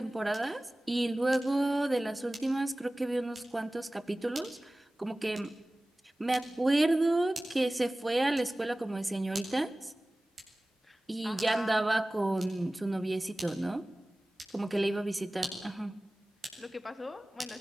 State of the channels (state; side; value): normal; both; correlation 0.98